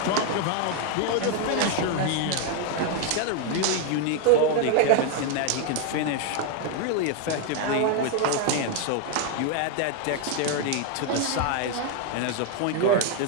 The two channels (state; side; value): different; both; correlation 0.01